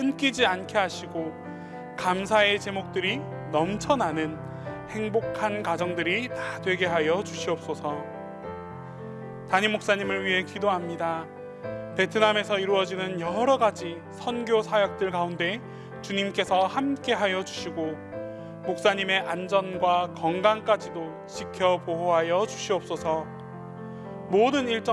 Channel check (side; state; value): both; identical; correlation 1.00